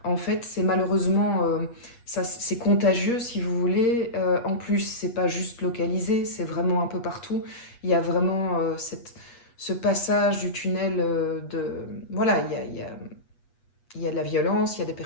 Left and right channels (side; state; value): right; late; 8.3 ms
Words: en fait, c'est malheureusement, c'est contagieux si vous voulez. En plus, c'est pas juste localisé, c'est vraiment un peu partout. Il y a vraiment ce passage du tunnel voilà, il y a de la violence, il y a des